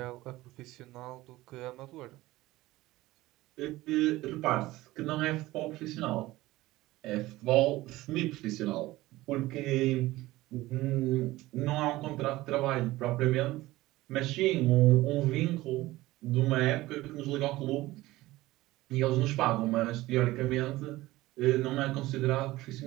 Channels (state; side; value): quieter; left; 18.0 dB